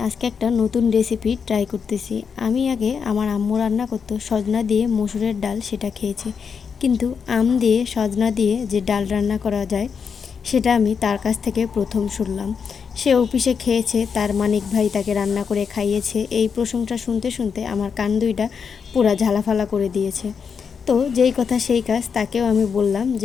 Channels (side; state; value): right; quieter; 6.3 dB